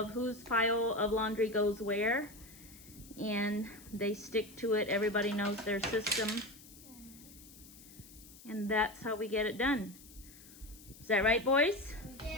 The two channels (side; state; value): left; noise; hiss, 20 dB below the sound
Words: whose pile of laundry goes where, and they stick to it. Everybody knows their system, and that's how we get it done. Is that right, boys?